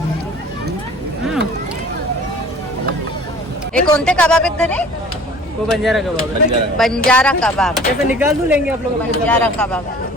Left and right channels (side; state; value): both; normal; correlation 0.47